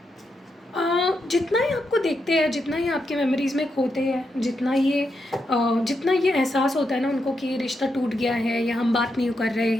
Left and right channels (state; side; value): normal; both; correlation 0.84